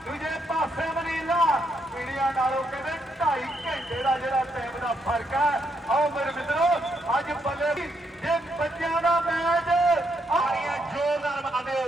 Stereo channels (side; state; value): both; normal; correlation 0.77